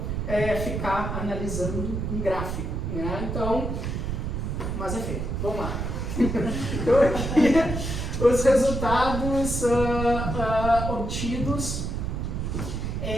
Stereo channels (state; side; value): noise; right; rumble, 3 dB below the sound